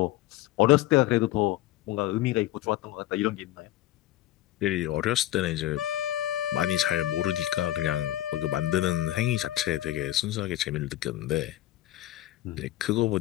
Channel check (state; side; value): quieter; right; 14.7 dB